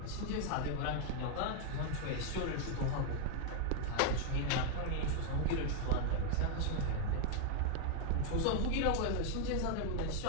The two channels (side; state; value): both; different; correlation 0.00